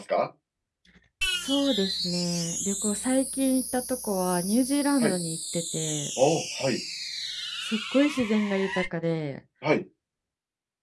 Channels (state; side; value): identical; both; correlation 1.00